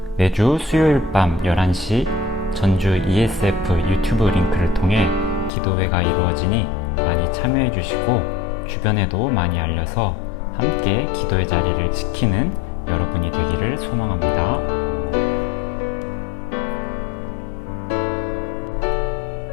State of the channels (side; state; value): right; drops out; at 5.5 s